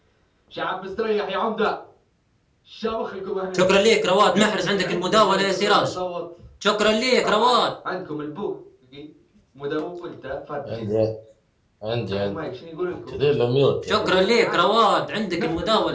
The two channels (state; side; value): identical; both; correlation 1.00